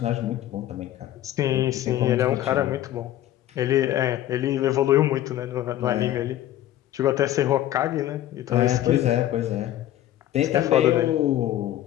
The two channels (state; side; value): quieter; right; 13.0 dB